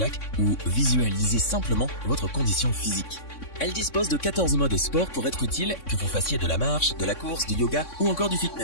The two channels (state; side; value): late; right; 3.6 ms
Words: ou visualiser simplement votre condition physique. Elle dispose de 14 modes sport pour être utile, que vous fassiez de la marche, de la course, du yoga ou encore du